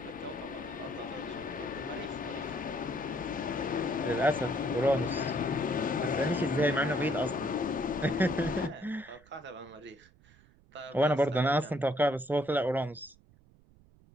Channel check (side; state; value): right; noise; rumble, 27 dB below the sound